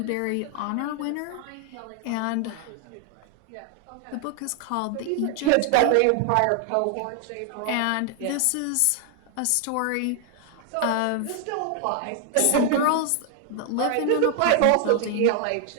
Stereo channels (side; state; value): both; different; correlation 0.00